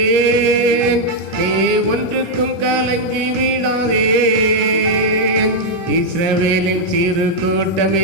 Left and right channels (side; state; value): left; late; 10 ms